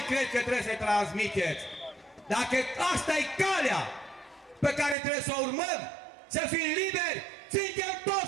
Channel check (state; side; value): drops out; left; at 5.0 s